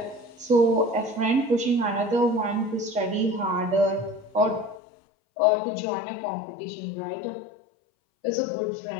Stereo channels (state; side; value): drops out; right; at 4.8 s